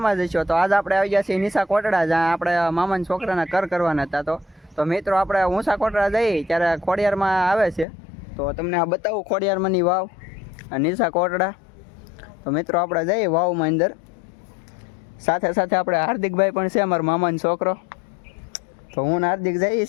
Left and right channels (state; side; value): drops out; right; at 7.9 s